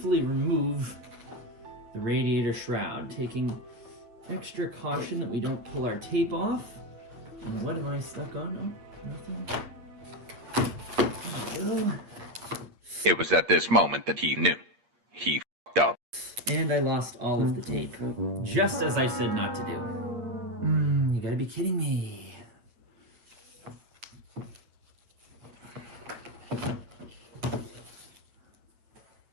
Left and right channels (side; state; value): left; late; 8.5 ms